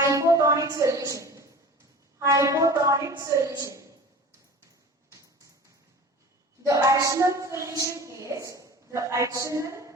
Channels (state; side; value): normal; both; correlation 0.38